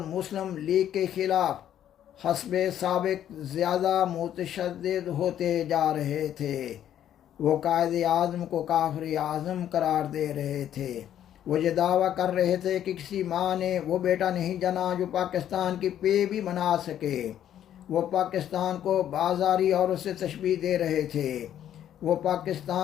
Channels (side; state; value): right; quieter; 10.7 dB